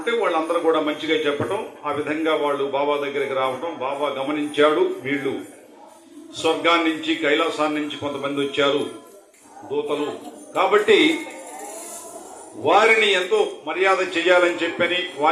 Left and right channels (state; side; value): identical; both; correlation 1.00